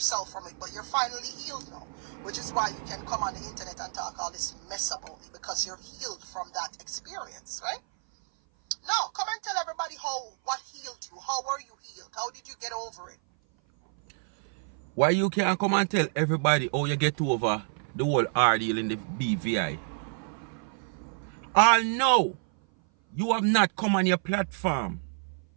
from it, but you're finally healed now. Which is why you can come on the internet and talk all this mess about me, because you're healed from that experience, right? Now, come and tell everybody what healed you. How were you healed? How did you get over it? Why you can't come and tell everybody how you get over the whole ordeal in the BVI? I know you have not come on your platform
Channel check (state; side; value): silent; left; 56 dB below the other